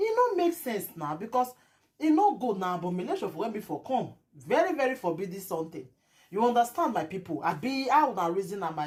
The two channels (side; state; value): both; identical; correlation 1.00